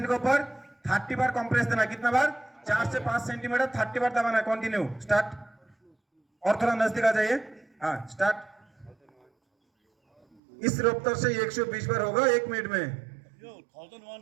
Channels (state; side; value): drops out; left; at 10.4 s